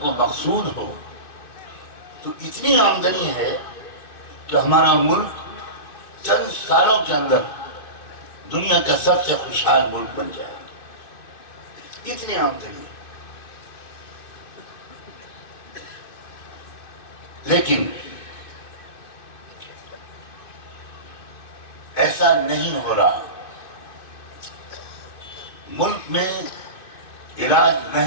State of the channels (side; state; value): right; late; 2.6 ms